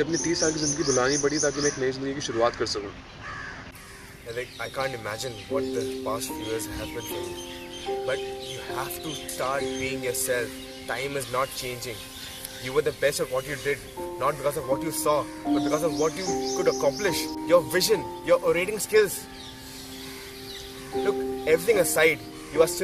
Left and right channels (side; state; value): both; identical; correlation 1.00